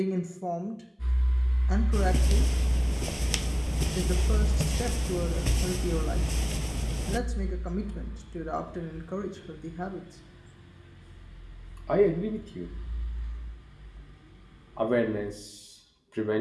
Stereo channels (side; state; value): both; identical; correlation 1.00